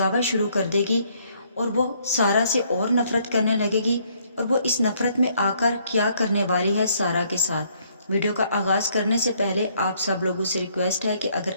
शुरू कर देगी और वो सारा से और नफरत करने लगेगी, और वो इस नफरत में आकर क्या करने वाली है सारा के साथ। वीडियो का आगाज करने से पहले आप सब लोगों से रिक्वेस्ट है कि अगर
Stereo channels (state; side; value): inverted; both; correlation -0.67